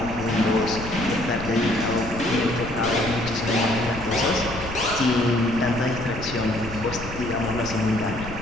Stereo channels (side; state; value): left; noise; rumble, 11 dB below the sound